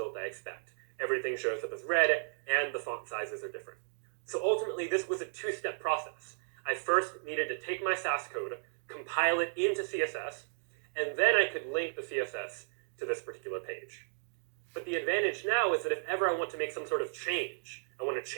I expect. Everything shows up as red, and the font sizes are different. So ultimately, this was a two-step process. I first needed to take my Sass code, compile it into CSS, and then I could link the CSS to this particular page. But the advantage now is that if ever I want to make some sort of change, I want to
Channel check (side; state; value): left; silent; digital silence